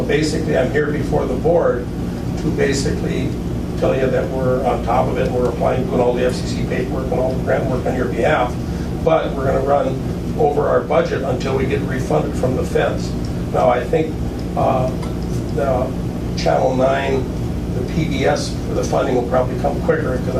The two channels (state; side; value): identical; both; correlation 1.00